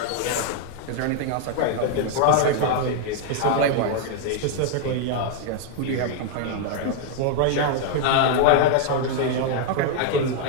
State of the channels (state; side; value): different; both; correlation 0.00